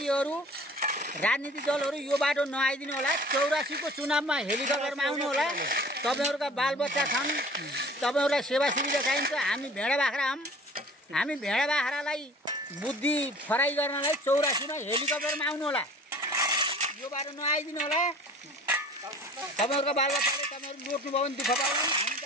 राजनीतिक दलहरू यो बाटो नआइदिनु होला 84 को चुनावमा हेलिकप्टरमा आउनु होला तपाईँहरूका बालबच्चा छन् तपाईँहरूलाई सेवा सुविधा चाहिन्छ हामी भेडा बाख्रा हौँ हामी भेडा बाख्रालाई बुद्धि फराई गर्नलाई 84 मा हेलिकप्टरमा आउनु होला यो बाटो नआइदिनु होला तपाईँहरूका बालबच्चाले तपाईँहरू लोट्नुभयो भने दुःख पाउनु हामी त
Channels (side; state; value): both; normal; correlation 0.46